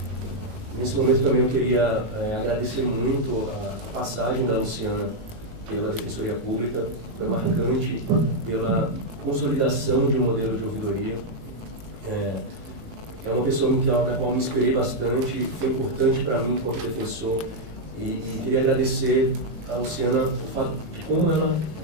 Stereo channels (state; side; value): late; left; 18 ms